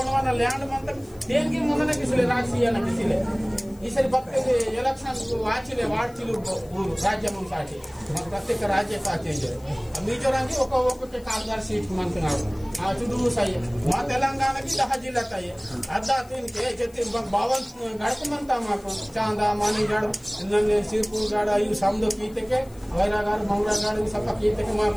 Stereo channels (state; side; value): noise; left; hiss, 26 dB below the sound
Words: लैंड मत देनकी मनने किसले राजसीय न किसले ಈ ಸರಿ ಬರ್ತದೆ ಎಲೆಕ್ಷನ್ ವಾಚಿಲೆ ವಾಡ್ತಿಲು ಊರು ರಾಜ್ಯ ಮುಂಸಾಟಿ ಪ್ರತ್ಯೇಕ ರಾಜ್ಯ ಸಾಚೇಂಜೆ ಮಿಜೋರಾಂಗಿ ఒక్కొక్క కాల్దార్ సీట్ మంటున్నారు ఆ చుడూ సై మా తెలంగాణకి 10 జిల్లా తాయి అద్దా తిన్కే చెత్తి బావన్ గడకమంతా మాకు చాందా మానిగడ నన్నే సిర్పూర్ గడ ఈ సమదో కీతకే వైరాగారు మంగళగారు సప కీతకే